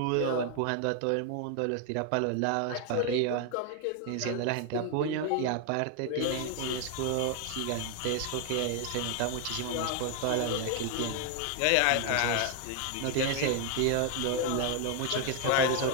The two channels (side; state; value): both; different; correlation 0.00